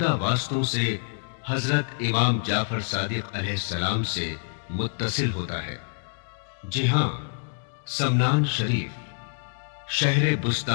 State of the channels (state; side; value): silent; right; digital silence